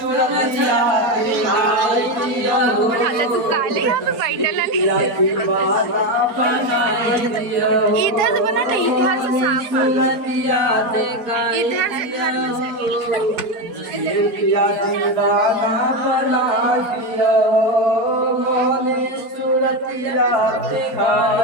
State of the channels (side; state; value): left; late; 4.4 ms